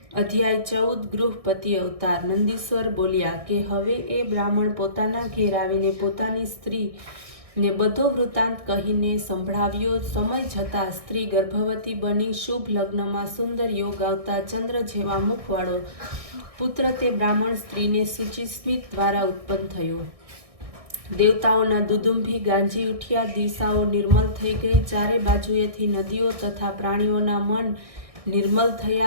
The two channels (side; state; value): left; late; 1.6 ms